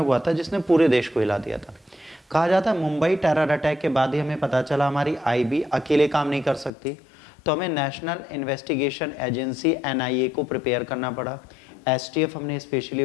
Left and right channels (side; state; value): right; drops out; at 6.7 s